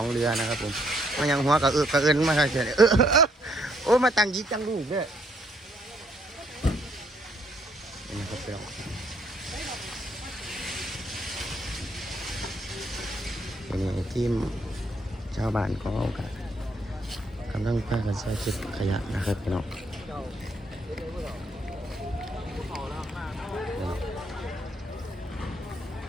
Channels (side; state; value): both; normal; correlation 0.70